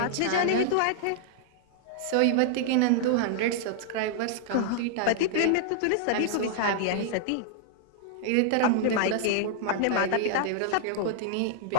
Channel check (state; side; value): different; both; correlation -0.01